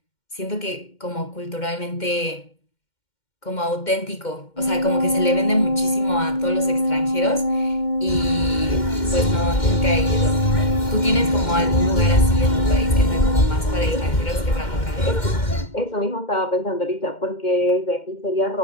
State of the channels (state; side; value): late; right; 2.1 ms